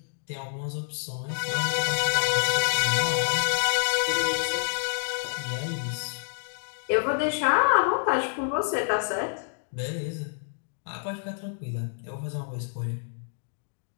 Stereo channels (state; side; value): silent; right; digital silence